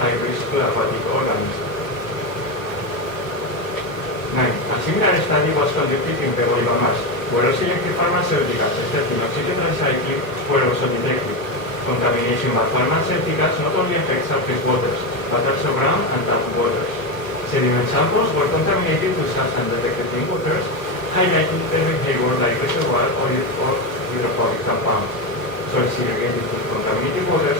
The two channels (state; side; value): late; right; 1.1 ms